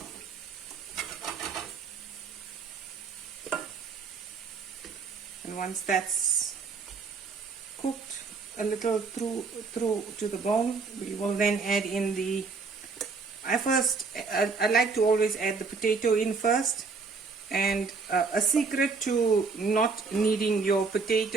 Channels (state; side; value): quieter; left; 4.6 dB